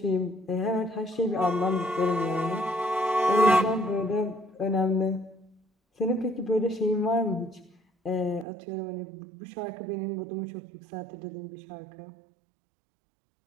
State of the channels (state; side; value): drops out; left; at 8.5 s